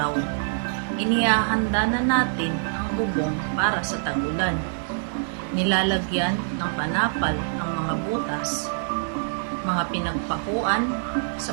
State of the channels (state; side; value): silent; left; digital silence